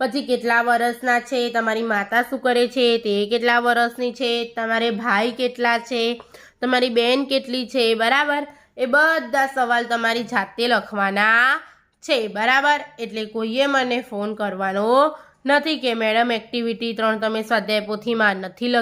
કેટલા વર્ષના છે, તમારી માતા શું કરે છે, તે કેટલા વર્ષની છે, તમારે ભાઈ કેટલા છે, તમારી બહેન કેટલી છે. બરાબર. એ બધા સવાલ તમારી જાતે લખવાના છે. બરાબર. એટલે કોઈએ મને ફોન કરવાનો નથી કે મેડમ એક્ટિવિટી 3 તમે સ્વાધ્યાય પોથીમાં નથી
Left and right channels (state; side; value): identical; both; correlation 1.00